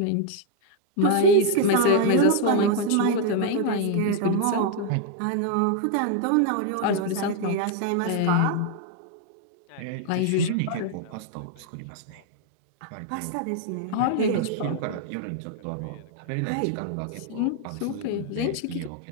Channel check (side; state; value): both; different; correlation 0.00